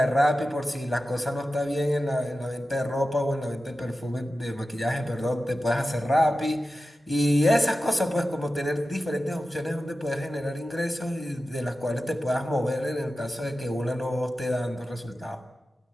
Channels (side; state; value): both; normal; correlation 0.93